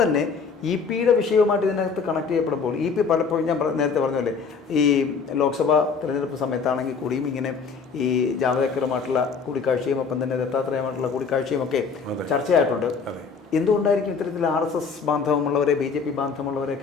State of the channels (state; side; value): quieter; right; 5.4 dB